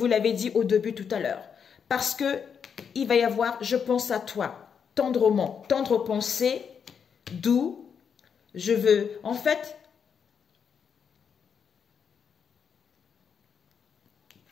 l'avais dit au début tout à l'heure. Parce que il va y avoir, je pense à toi, tendrement, tendre pensée, d'où je veux, en fait,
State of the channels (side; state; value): right; quieter; 7.0 dB